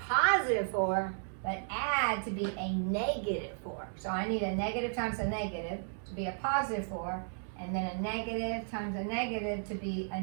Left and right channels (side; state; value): left; silent; digital silence